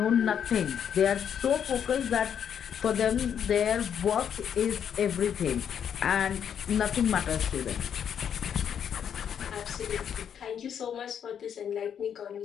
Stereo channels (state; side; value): quieter; right; 8.4 dB